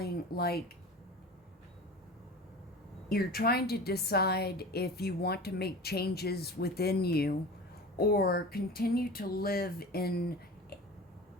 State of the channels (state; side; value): normal; both; correlation 0.35